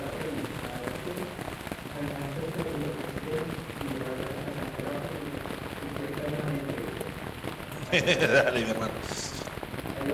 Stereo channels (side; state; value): both; identical; correlation 1.00